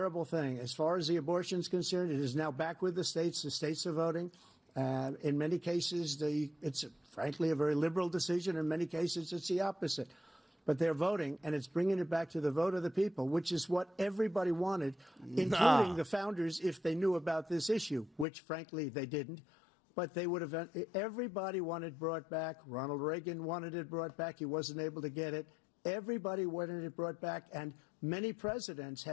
thing. As far as the abortion is concerned, it is now back with the states. The states are voting. In many cases, it's frankly a very liberal decision. In many cases, it's the opposite. But they're voting, and it's bringing it back to the vote of the people, which is what everybody wanted, including the founders, if they knew about this issue, which, frankly, they didn't. But they would have. Everybody wanted it brought back. Ronald Reagan wanted it brought back. He wasn't able to get it. Everybody wanted it brought back, and many presidents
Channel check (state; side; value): drops out; right; at 18.2 s